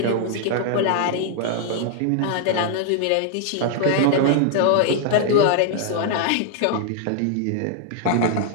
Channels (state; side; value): different; both; correlation 0.00